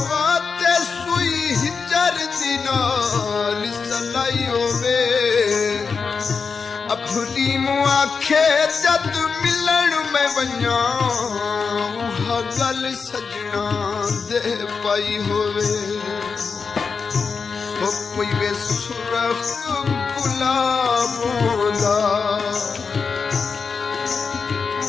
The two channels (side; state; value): right; quieter; 5.2 dB